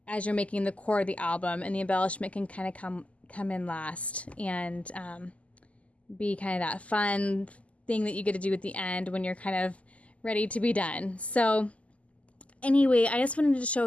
as you're making the core of the album, and the embellishment can kind of come in last and be kind of that fun thing that you get to do at the end when you're kind of ready to be done. So anyway, I just wanted to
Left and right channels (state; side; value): late; right; 0.067 ms